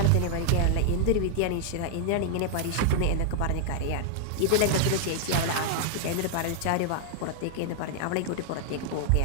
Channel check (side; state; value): both; different; correlation 0.00